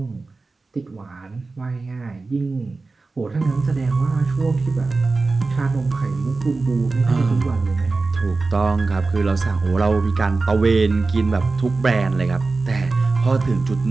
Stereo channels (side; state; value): left; quieter; 3.7 dB